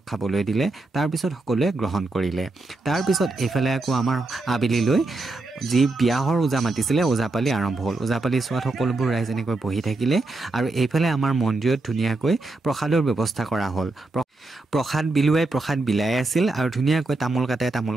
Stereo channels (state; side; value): quieter; left; 3.2 dB